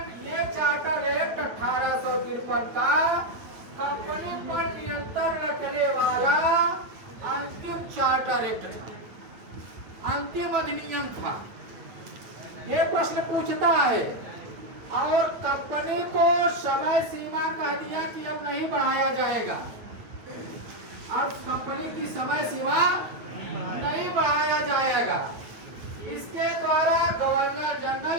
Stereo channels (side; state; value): left; late; 8.7 ms